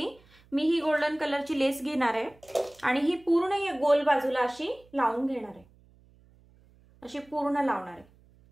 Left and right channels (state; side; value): noise; right; hum, 29 dB below the sound